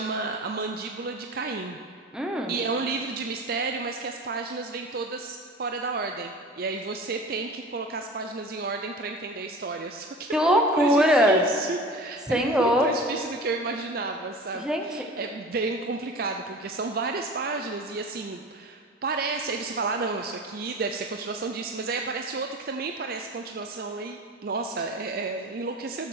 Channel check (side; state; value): both; normal; correlation 0.36